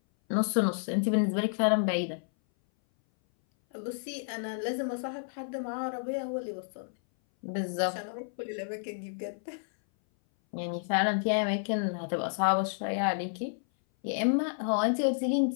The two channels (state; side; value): silent; right; 57 dB below the other